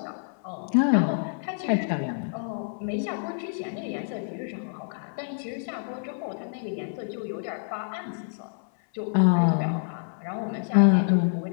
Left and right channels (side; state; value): right; silent; 60 dB below the other